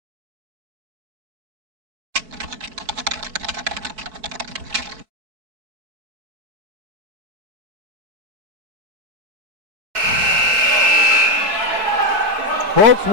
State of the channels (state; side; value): late; left; 4.6 ms